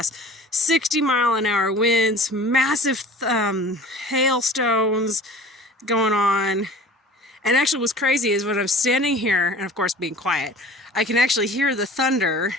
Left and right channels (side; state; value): both; normal; correlation 0.43